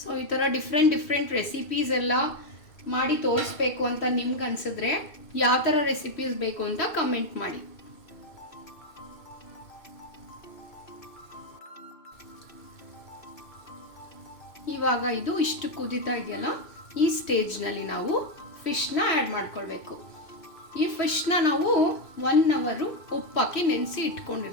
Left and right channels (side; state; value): right; late; 2.6 ms